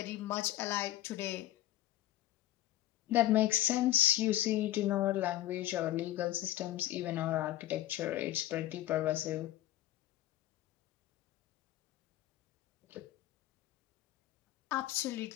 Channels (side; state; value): right; quieter; 14.4 dB